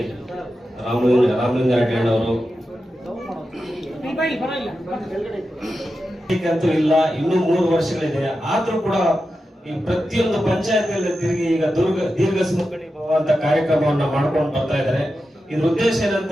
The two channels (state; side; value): normal; both; correlation 0.91